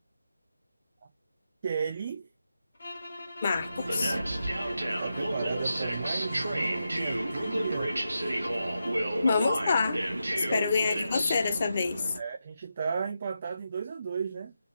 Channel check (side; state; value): both; inverted; correlation -0.87